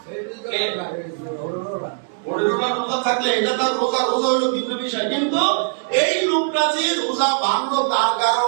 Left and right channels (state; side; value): silent; left; digital silence